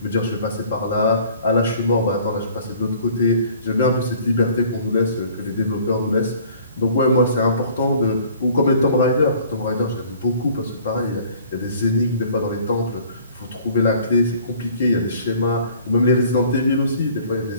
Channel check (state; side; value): inverted; both; correlation -0.53